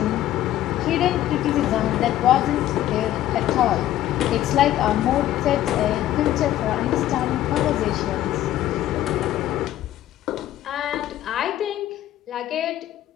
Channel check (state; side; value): quieter; right; 13.1 dB